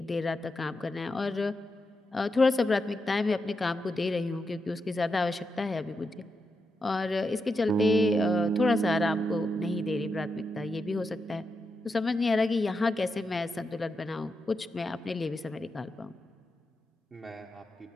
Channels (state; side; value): normal; both; correlation 0.86